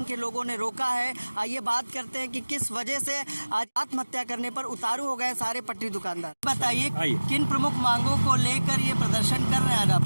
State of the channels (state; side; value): inverted; both; correlation -1.00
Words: के लोगों ने रोका है। आइए बात करते हैं कि किस वजह से आज आत्महत्या करने पर उतारू हो गए सारे पटरी दुकानदार। बताइए किन प्रमुख मांगों को लेकर ये प्रदर्शन कर रहे हैं आज आप